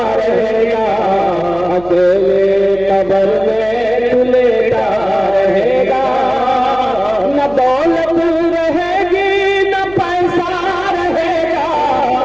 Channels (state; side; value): noise; right; hum, 20 dB below the sound